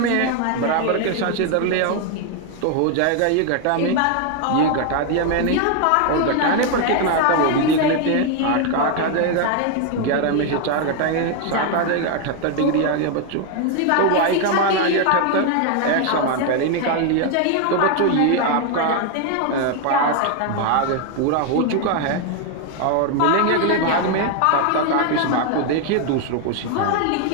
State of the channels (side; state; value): both; different; correlation 0.00